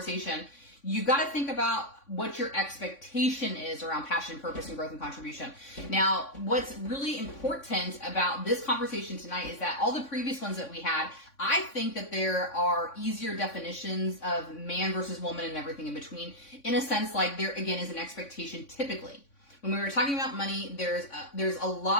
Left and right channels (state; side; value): late; right; 3.6 ms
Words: you got to think about what your expectation is around passion, purpose, and growth and contribution. Now, what's really important about this conversation tonight is that all the previous ones that we had, I think that there are easier definitions of man versus woman and everything in between. In a sense, like there again is an expectation typically. When we were talking about money, there's a